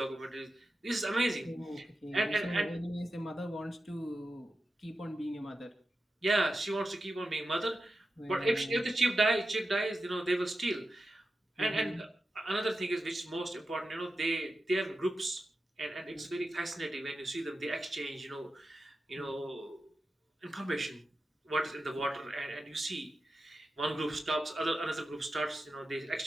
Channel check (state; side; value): normal; both; correlation 0.91